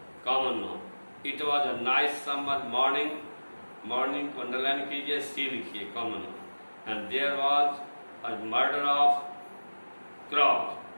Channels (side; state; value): both; inverted; correlation -1.00